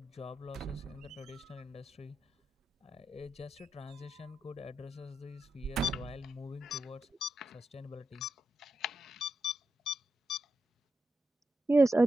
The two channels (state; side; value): normal; both; correlation 0.86